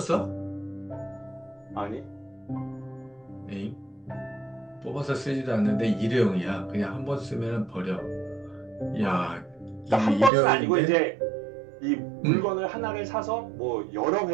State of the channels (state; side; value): drops out; left; at 10.3 s